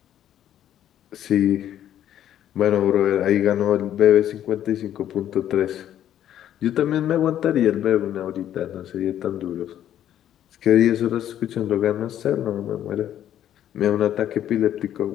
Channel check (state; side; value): quieter; right; 11.1 dB